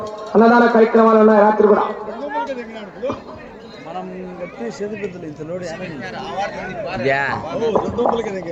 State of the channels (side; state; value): both; identical; correlation 1.00